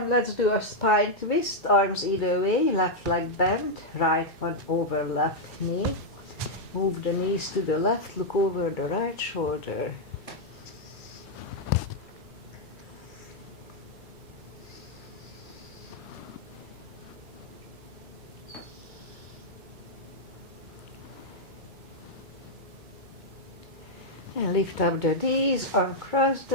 Let's do a spine twist, arms either way, left leg bent, right one over left knee. Move the knees to the left, look over the right shoulder. And lift up the knees, uncross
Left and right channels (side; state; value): both; normal; correlation -0.03